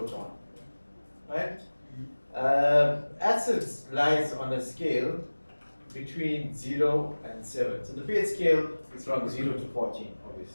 right? Acids lies on a scale between 0 and 7. So the pH scale is from 0 to 14,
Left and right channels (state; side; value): inverted; both; correlation -1.00